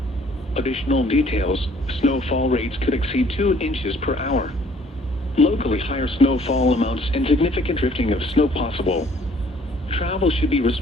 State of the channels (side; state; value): both; normal; correlation 0.59